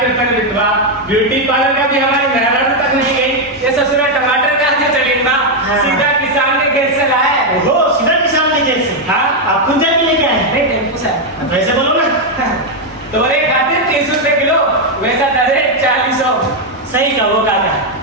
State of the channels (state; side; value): normal; both; correlation 0.02